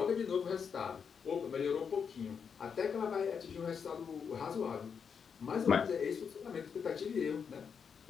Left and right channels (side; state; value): right; quieter; 6.6 dB